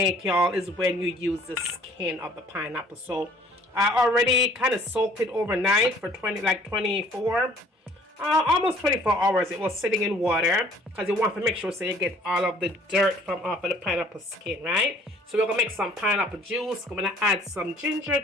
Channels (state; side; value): normal; both; correlation 0.56